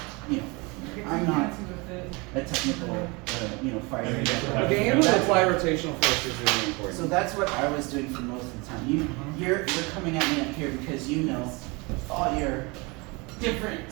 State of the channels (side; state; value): left; quieter; 27.2 dB